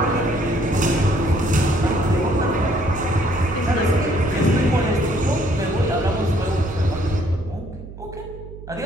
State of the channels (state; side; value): noise; right; hum, 14 dB below the sound